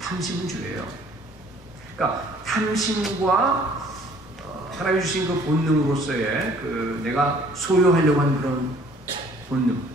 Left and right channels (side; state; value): both; normal; correlation 0.57